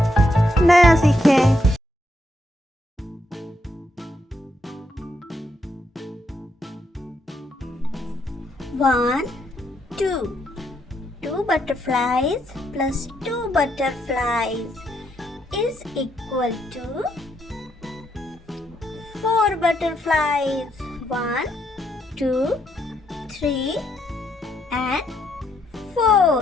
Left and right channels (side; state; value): both; normal; correlation 0.76